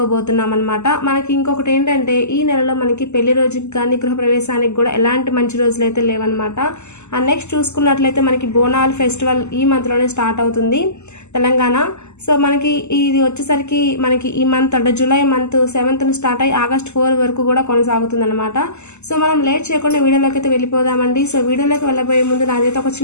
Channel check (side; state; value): right; late; 0.83 ms